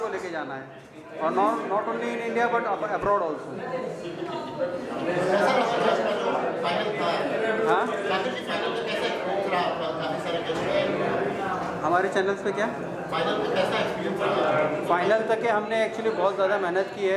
लेके जाना है और not only in India but abroad also. हाँ, हमारे चैनल्स पे क्या फाइनल तक के हमने एक्चुअली बहुत ज़्यादा मेहनत की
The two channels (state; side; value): identical; both; correlation 1.00